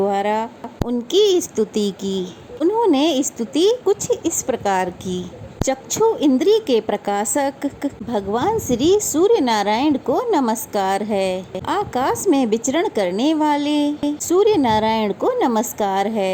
उनकी स्तुति की। उन्होंने स्तुति कुछ इस प्रकार की। चक्षु इंद्री के प्रकाशक भगवान श्री सूर्य नारायण को नमस्कार है। आकाश में विचरण करने वाले सूर्य नारायण को नमस्कार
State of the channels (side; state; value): both; identical; correlation 1.00